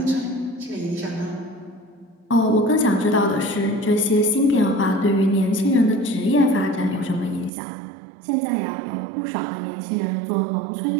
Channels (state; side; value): drops out; left; at 7.5 s